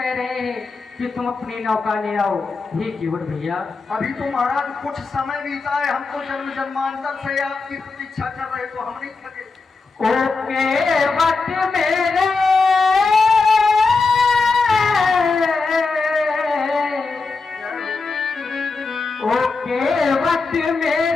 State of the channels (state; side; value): quieter; right; 4.2 dB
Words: रहे हैं कि तुम अपनी नौका ले आओ। हे केवल भैया अभी तो महाराज कुछ समय बीता है, हमको जन्म जन्मांतर से आपकी प्रतीक्षा कर रहे तो हम नहीं थके। ओके वक्त मेरे ओके वक्त